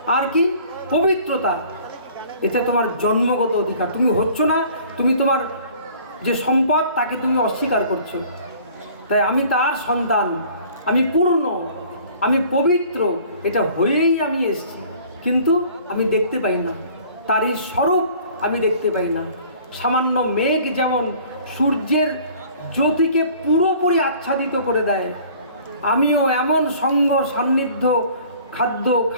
আর কি পবিত্রতা, এটা তোমার জন্মগত অধিকার। তুমি হচ্ছ না, তুমি তোমার যে সম্পদ তাকে তুমি অস্বীকার করছো। তাই আমি তার সন্তান, আমি পূর্ণ, আমি পবিত্র, এটা হয়েই আমি এসেছি, কিন্তু আমি দেখতে পাই না, তার এই স্বরূপ আমি দেখতে পাই না। সামান্য মেঘ যেমন সূর্যের জ্যোতিকে পুরোপুরি আচ্ছাদিত করে দেয়, আমিও এমন সঙ্গ সান্নিধ্য, খাদ্য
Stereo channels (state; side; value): inverted; both; correlation -0.51